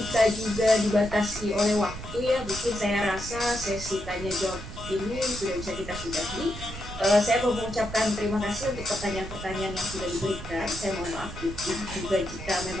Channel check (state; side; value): noise; right; rumble, 11 dB below the sound